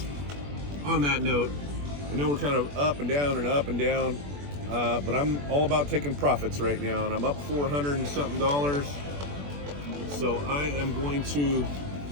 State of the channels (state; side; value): late; left; 21 ms